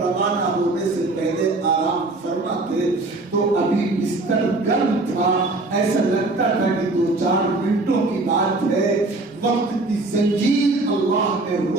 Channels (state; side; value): quieter; left; 3.1 dB